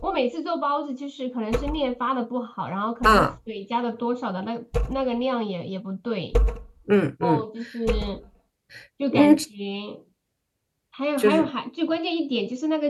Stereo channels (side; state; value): both; identical; correlation 1.00